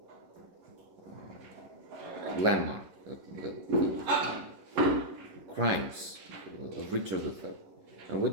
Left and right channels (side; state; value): left; late; 11 ms